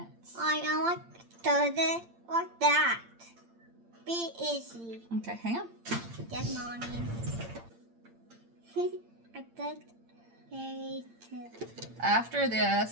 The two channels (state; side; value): late; left; 8.8 ms